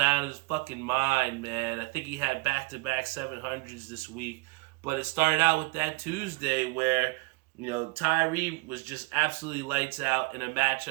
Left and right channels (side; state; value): left; quieter; 26.8 dB